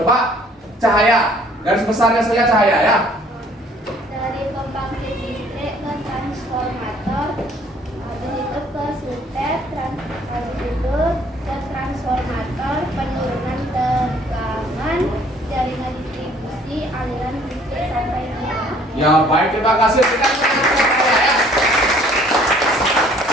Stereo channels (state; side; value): normal; both; correlation 0.58